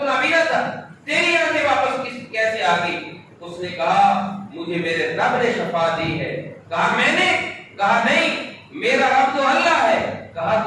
نابینا تھا، تیری آنکھیں واپس کیسے آ گئی؟ اس نے کہا مجھے میرے رب نے شفا دی ہے۔ کہا میں نے؟ کہا نہیں، میرا رب تو اللہ ہے۔ کہا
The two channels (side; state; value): both; identical; correlation 1.00